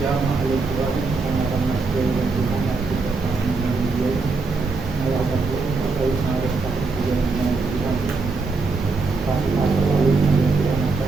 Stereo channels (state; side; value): quieter; left; 4.0 dB